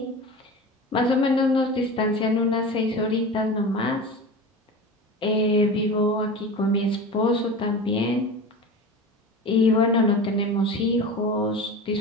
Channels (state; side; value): normal; both; correlation 0.31